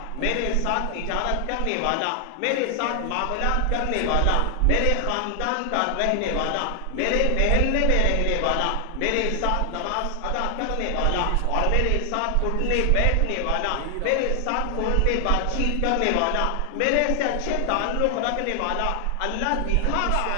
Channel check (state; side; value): different; both; correlation 0.00